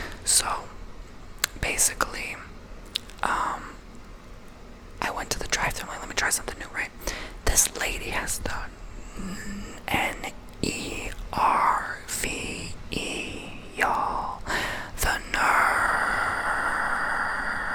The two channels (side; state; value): both; identical; correlation 1.00